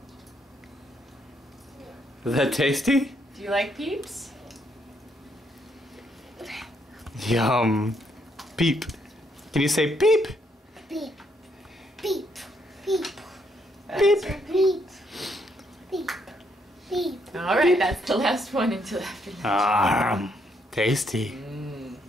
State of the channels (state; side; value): normal; both; correlation 0.73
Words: Is that tasty? Do you like peeps? Yum. Peep. Can you say peep? Peep. Peep. Peep. Peep. Peep. Peep. Peep. All right, that's the last one until after lunch. Tasty.